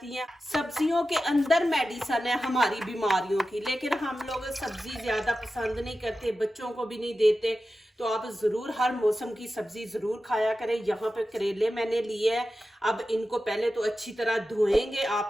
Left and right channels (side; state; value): both; normal; correlation 0.93